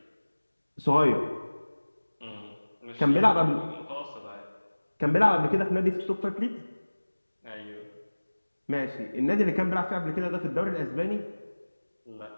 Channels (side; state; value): both; inverted; correlation -1.00